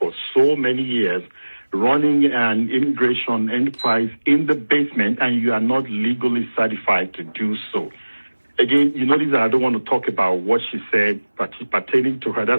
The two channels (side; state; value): both; inverted; correlation -1.00